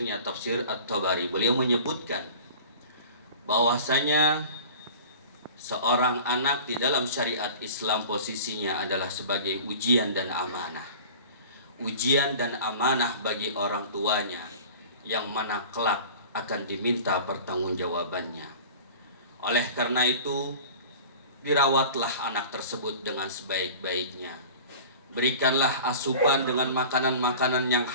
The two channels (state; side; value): inverted; both; correlation -0.40